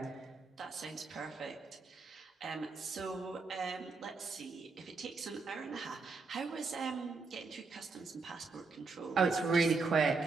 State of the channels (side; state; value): left; quieter; 4.2 dB